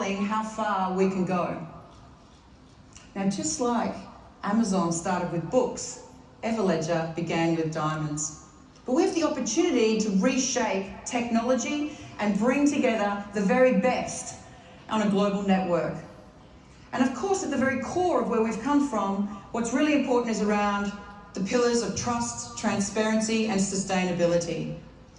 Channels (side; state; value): both; identical; correlation 1.00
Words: how far we can go. Now, just like Amazon started with books, Everledger began with diamonds. But we have the opportunity to reshape technology and bring together the very best on a global network. And of course, at the very core of where we've come from, what's really important is around the pillars of trust, transparency, and sustainability.